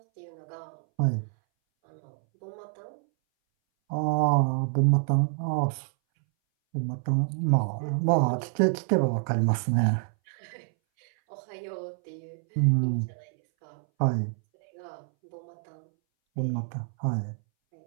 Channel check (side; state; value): left; silent; 60 dB below the other